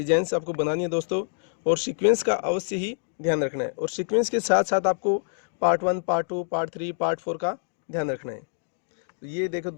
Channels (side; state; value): right; silent; digital silence